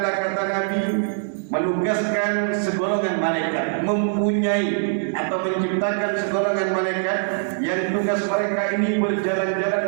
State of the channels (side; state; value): left; silent; digital silence